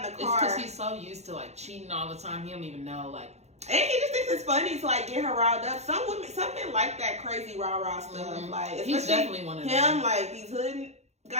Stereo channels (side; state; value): left; late; 0.32 ms